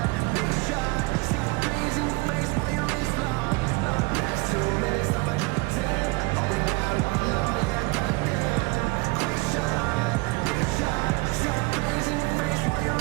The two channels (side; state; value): left; quieter; 25.3 dB